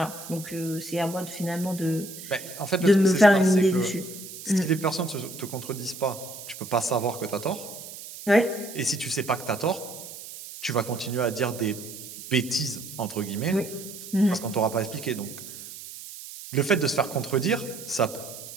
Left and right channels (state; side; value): noise; right; hiss, 13 dB below the sound